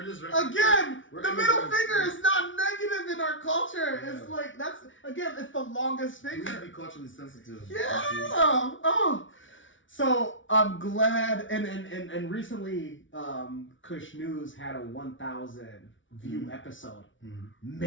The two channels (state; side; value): late; right; 0.56 ms